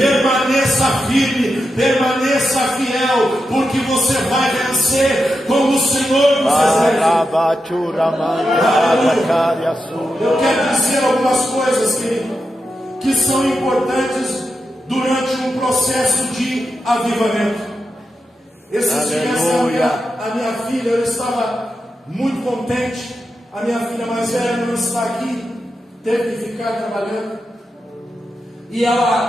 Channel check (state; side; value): normal; both; correlation 0.88